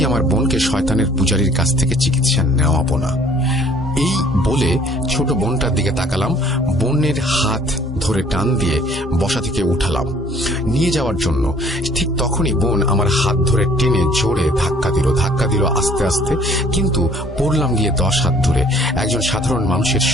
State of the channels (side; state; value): both; normal; correlation 0.57